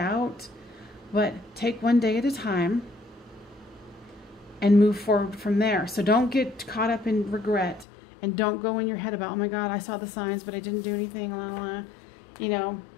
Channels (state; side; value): drops out; right; at 7.9 s